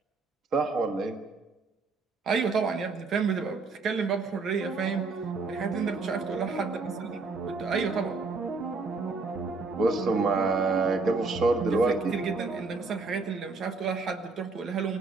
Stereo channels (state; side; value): quieter; left; 4.0 dB